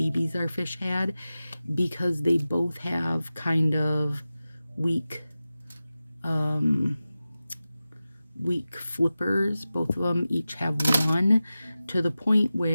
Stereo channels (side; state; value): both; inverted; correlation -0.95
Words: our fish had, because they both have kind of weak flippers. Both of them each have 1, to the point